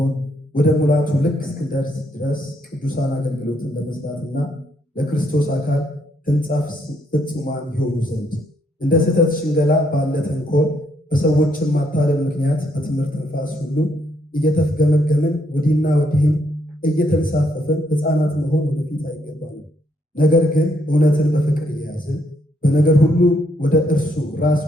ወደ ሙላቱ ልክ እስክንደርስ ድረስ ቅዱሳን አገልግሎትን ለመስራትና ለክርስቶስ አካል ሕንጻ ፍጹማን ይሆኑ ዘንድ እንደ ስህተት ሽንገላ ባለ ተንኮል በሰዎችም ማታለል ምክንያት በትምህርት ነፋስ ሁሉ እየተፍገመገምን ወዲህና ወዲህም እየተንሳፈፍን ሕፃናት መሆን ወደፊት አይገባንም። ነገር ግን እውነትን በፍቅር እየያዝን በነገር ሁሉ ወደ እርሱ ራስ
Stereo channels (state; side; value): normal; both; correlation 0.73